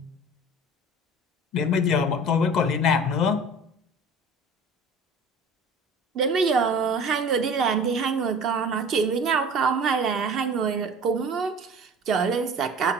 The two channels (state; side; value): normal; both; correlation 0.41